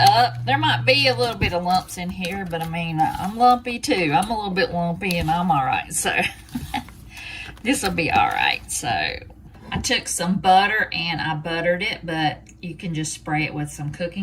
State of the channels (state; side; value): identical; both; correlation 1.00